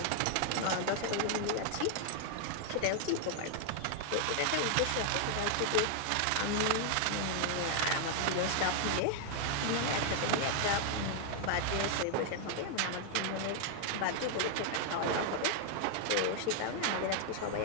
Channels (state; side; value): different; both; correlation 0.00